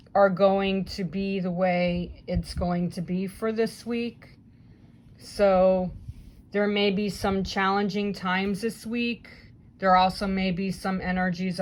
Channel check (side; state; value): both; identical; correlation 1.00